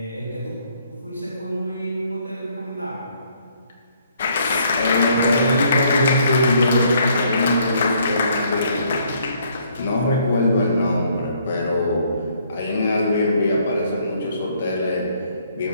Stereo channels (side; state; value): both; inverted; correlation -0.66